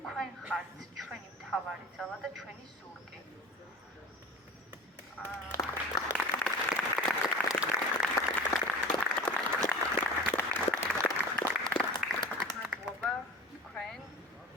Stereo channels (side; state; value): both; normal; correlation 0.38